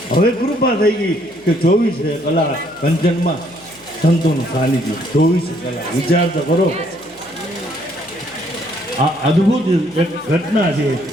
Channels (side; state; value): left; noise; hum, 30 dB below the sound